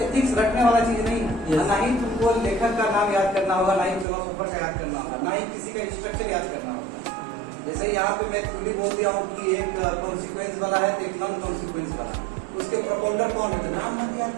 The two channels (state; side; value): drops out; left; at 4.0 s